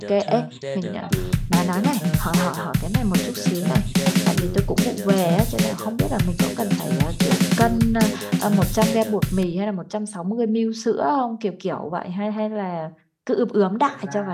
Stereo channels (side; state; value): both; identical; correlation 1.00